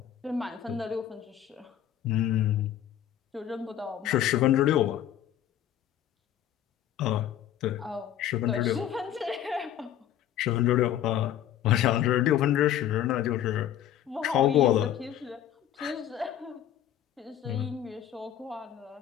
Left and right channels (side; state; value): right; quieter; 10.9 dB